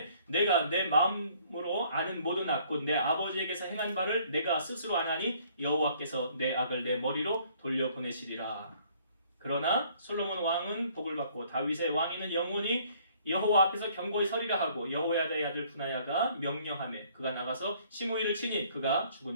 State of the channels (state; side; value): inverted; both; correlation -0.60